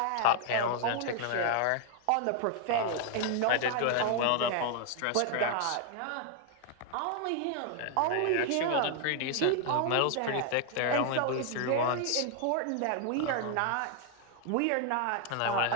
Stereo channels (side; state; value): both; different; correlation 0.00